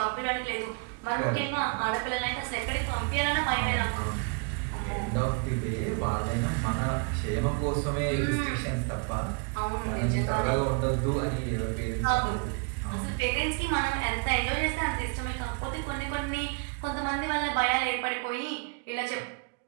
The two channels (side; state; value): left; quieter; 34.9 dB